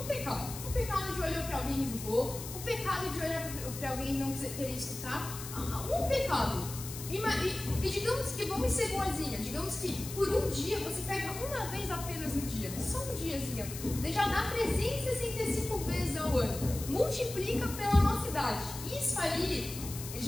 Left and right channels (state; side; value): noise; left; hiss, 10 dB below the sound